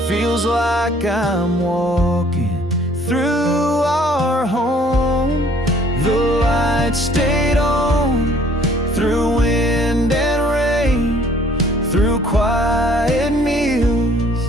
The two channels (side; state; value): both; normal; correlation 0.58